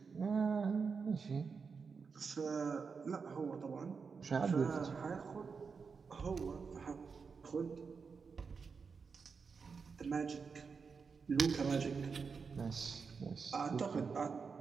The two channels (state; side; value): quieter; left; 5.4 dB